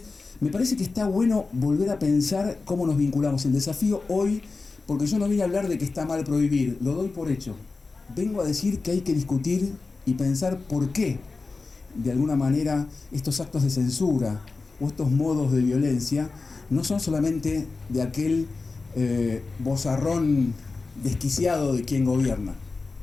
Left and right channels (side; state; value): right; quieter; 3.9 dB